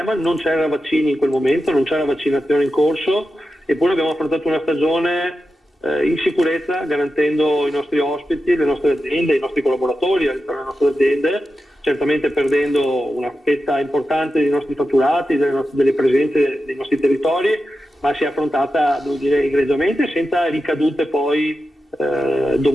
non c'era vaccini in quel momento, non c'era vaccinazione in corso, eppure abbiamo affrontato una stagione in sicurezza, garantendo i nostri ospiti, le nostre aziende, i nostri collaboratori all'interno delle nostre aziende, certamente perdendo una fetta importante dei nostri fatturati, delle presenze dei nostri territori, ma si è affrontata, devo dire, egregiamente, senza ricadute poi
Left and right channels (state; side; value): normal; both; correlation 0.91